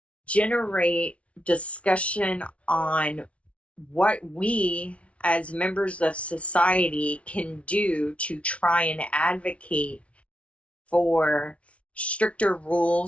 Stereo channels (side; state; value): right; late; 0.063 ms